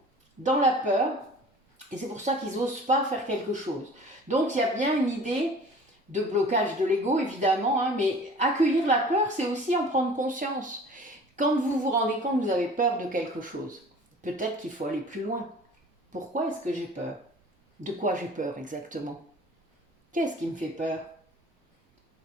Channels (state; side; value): normal; both; correlation 0.45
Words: dans la peur et c'est pour ça qu'ils n'osent pas faire quelque chose. Donc il y a bien une idée de blocage de l'ego, évidemment, hein, mais accueillir la peur, c'est aussi en prendre conscience. Quand vous vous rendez compte que vous avez peur de quelque chose, peut-être qu'il faut aller plus loin. Pourquoi est-ce que j'ai peur? De quoi j'ai peur exactement? Qu'est-ce qui me fait peur?